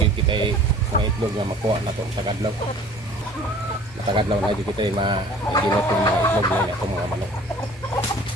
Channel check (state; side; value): normal; both; correlation 0.49